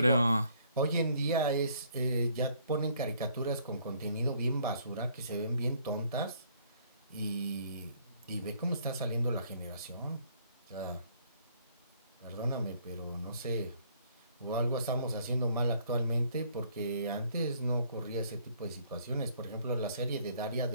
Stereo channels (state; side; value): inverted; both; correlation -0.63